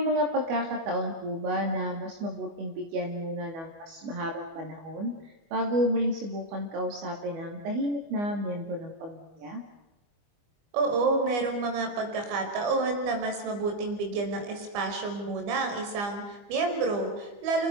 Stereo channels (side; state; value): left; late; 25 ms